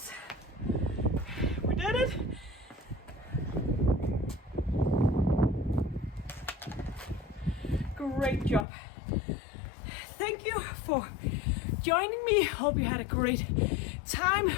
we did it. Great job. Thank you for joining me. Hope you had a great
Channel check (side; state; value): right; drops out; at 8.7 s